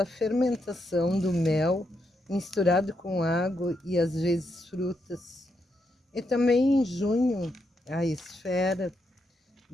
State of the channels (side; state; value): both; normal; correlation 0.81